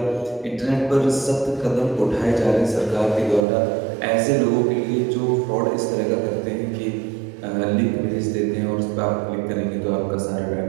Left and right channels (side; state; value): left; drops out; at 3.4 s